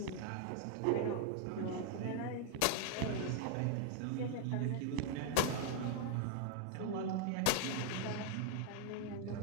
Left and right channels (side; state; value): both; different; correlation 0.00